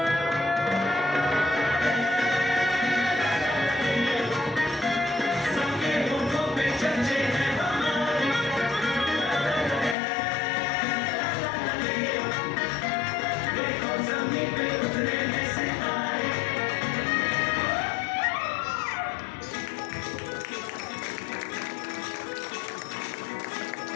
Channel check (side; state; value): right; drops out; at 10.0 s